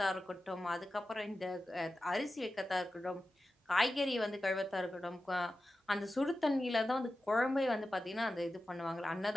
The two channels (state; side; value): normal; both; correlation 0.93